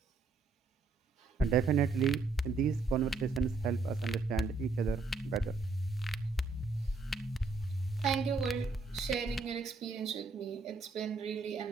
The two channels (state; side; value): quieter; left; 3.9 dB